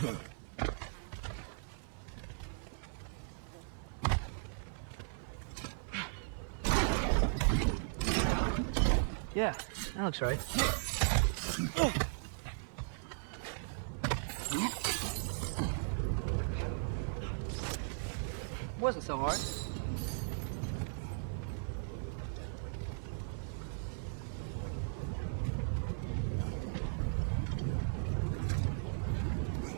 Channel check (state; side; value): silent; left; 53 dB below the other